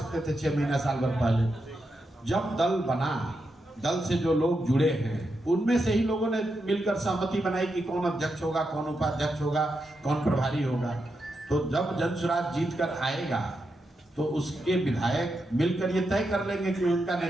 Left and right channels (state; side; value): normal; both; correlation 0.85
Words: थे 6 महीना साल भर पहले। जब दल बना, दल से जो लोग जुड़े हैं उनमें से ही लोगों ने मिलकर सहमति बनाई कि कौन अध्यक्ष होगा, कौन उपाध्यक्ष होगा, कौन प्रभारी होगा। तो जब जनसुराज जीत कर आएगा तो उसके विधायक मिलकर ये तय कर लेंगे कि उनका